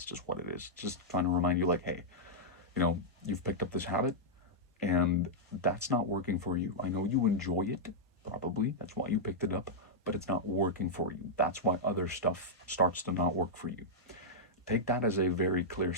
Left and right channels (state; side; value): normal; both; correlation -0.08